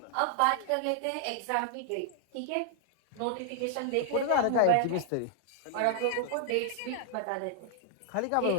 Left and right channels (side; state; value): both; different; correlation -0.01